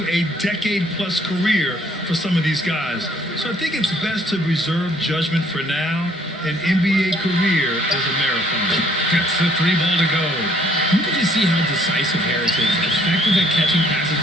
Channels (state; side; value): normal; both; correlation 0.62